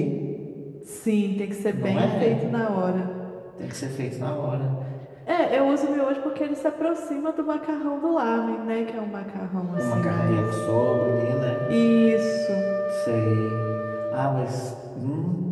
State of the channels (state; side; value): identical; both; correlation 1.00